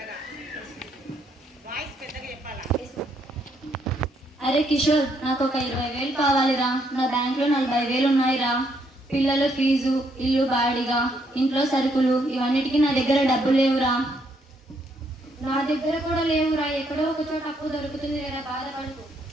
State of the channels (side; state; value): both; normal; correlation 0.73